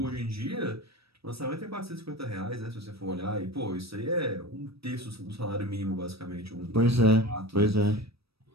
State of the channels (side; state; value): left; late; 0.77 ms